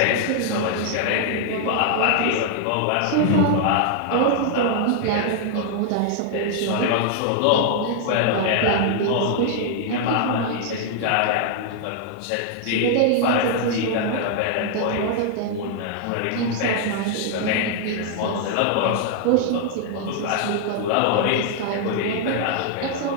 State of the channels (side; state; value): both; different; correlation 0.00